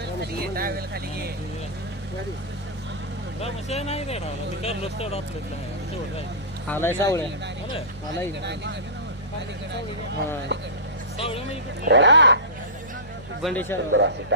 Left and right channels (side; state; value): right; noise; hum, 20 dB below the sound